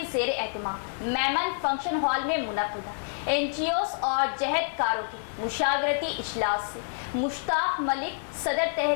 زیر اہتمام میمن فنکشن ہال میں منعقدہ NGOs اور جہد کاروں کے مشاورتی اجلاس سے مشتاق ملک صدر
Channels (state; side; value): silent; right; 59 dB below the other